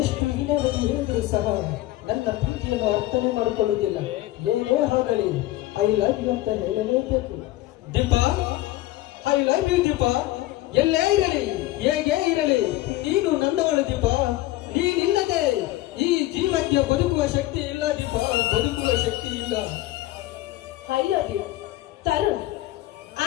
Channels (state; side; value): quieter; right; 16.7 dB